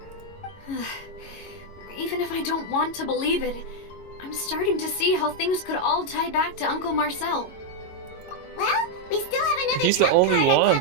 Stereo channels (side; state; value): right; late; 22 ms